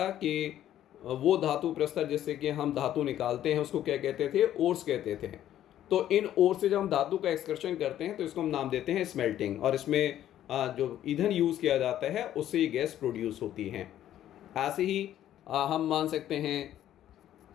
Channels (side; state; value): right; quieter; 11.9 dB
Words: कि वो धातु प्रस्तर जिससे कि हम धातु निकालते हैं उसको क्या कहते थे? ओर्स कहते थे। तो इन ओर्स से जब हम धातु का एक्सकर्शन करते हैं तो इसको हम नाम देते हैं स्मेल्टिंग। और इसमें जो ईंधन यूज़ किया जाता है उससे ये गैस प्रोड्यूस होती है। ऐसे ही हम मान सकते हैं